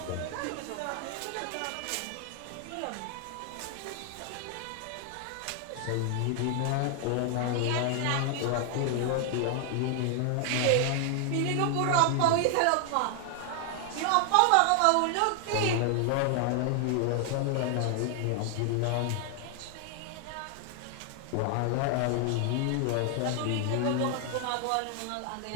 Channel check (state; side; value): different; both; correlation 0.00